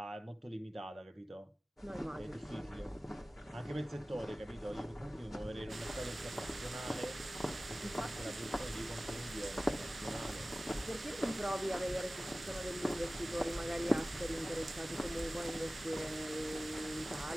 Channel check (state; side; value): normal; both; correlation 0.97